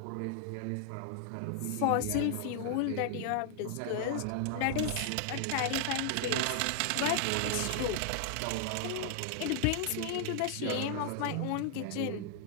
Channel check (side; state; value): both; different; correlation 0.00